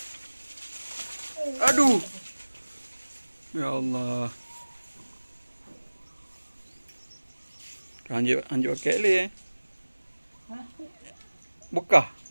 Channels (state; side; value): inverted; both; correlation -1.00